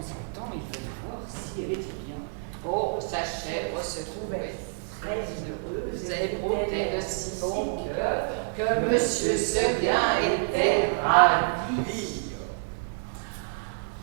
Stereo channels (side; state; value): left; silent; digital silence